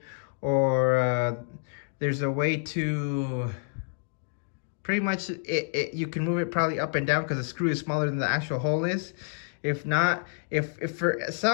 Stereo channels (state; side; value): silent; right; 59 dB below the other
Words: or there's a way to pretty much you can move it probably up and down because the screw is smaller than the actual hole is. If not, if for